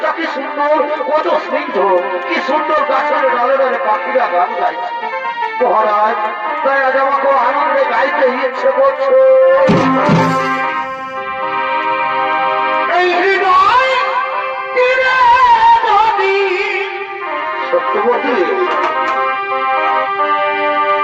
কি সুন্দর, কত স্নিগ্ধ, কি সুন্দর গাছের ডালে ডালে পাখিরা গান গাইছে। মহারাজ তাই আজ আমাকে আনন্দে গাইতে ইচ্ছে করছে। এই হৃদয় সত্যবতী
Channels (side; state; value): both; identical; correlation 1.00